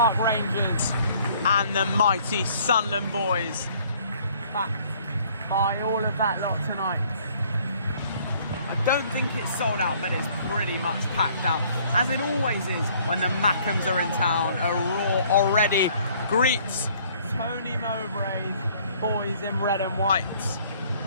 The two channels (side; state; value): both; inverted; correlation -0.59